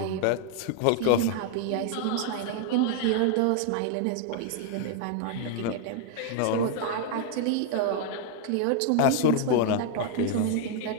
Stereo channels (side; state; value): both; different; correlation 0.00